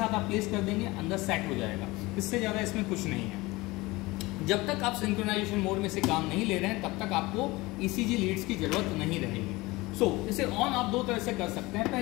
आप प्लेस कर देंगे, अंदर सेट हो जाएगा। इससे ज़्यादा इसमें कुछ नहीं है। जब तक आप सिंक्रोनाइजेशन मोड में से काम नहीं ले रहे हैं तब तक आपको ECG लीड्स की जरूरत नहीं रहेगी। सो इसे ऑन आप दो तरह से कर सकते हैं।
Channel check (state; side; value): quieter; right; 21.5 dB